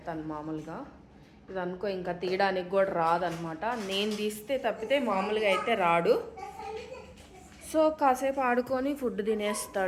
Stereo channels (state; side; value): identical; both; correlation 1.00